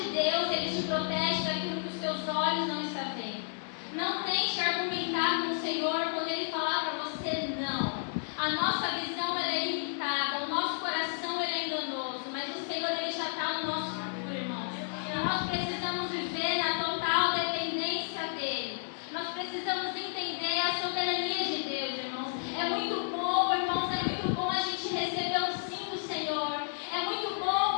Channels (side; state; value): right; silent; digital silence